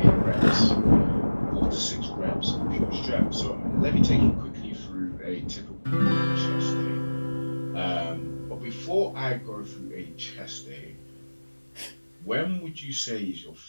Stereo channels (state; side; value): inverted; both; correlation -1.00